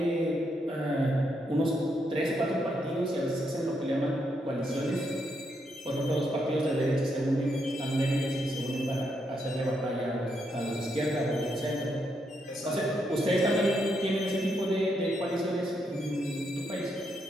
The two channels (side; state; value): both; normal; correlation 0.79